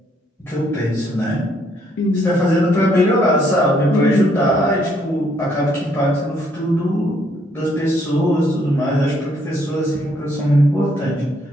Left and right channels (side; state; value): both; normal; correlation 0.69